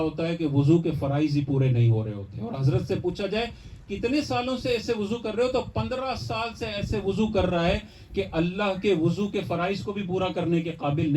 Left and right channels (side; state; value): both; identical; correlation 1.00